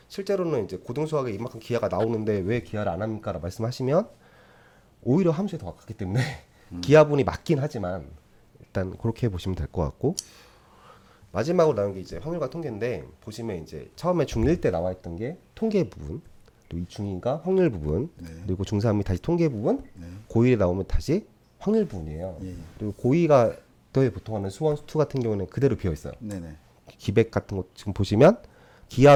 실제로는 이제 고등수학에 이만큼 기하가 나오는데 왜 기하를 안 합니까? 라고 말씀하시면 오히려 함수에 더 가깝기 때문에 기하분이 맞긴 하지만 일단 그렇게 보시면 될 것 같고 마지막으로 나온 게 이제 확률과 통계인데 보시면 이제 처음에 중1 때 나와 있던 게 통계 부분 또 중2가 확률 부분 그리고 중3이 다시 통계 부분 고1에 나오면 다시 확률 부분이에요. 그리고 고2가 또 보통 하는 수원 수투 같은 경우는 그대로 비어 있어요. 네, 네. 기백 같은 거 지금 보시면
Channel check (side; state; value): both; identical; correlation 1.00